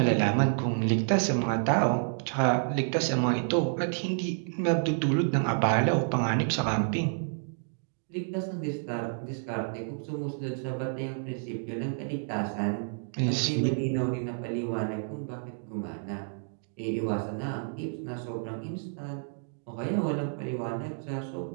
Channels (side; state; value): left; silent; digital silence